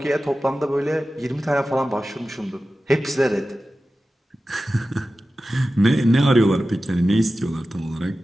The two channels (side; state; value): both; normal; correlation 0.94